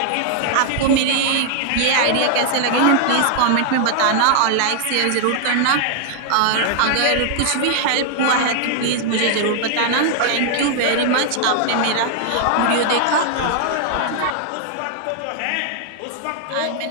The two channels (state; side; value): different; both; correlation 0.00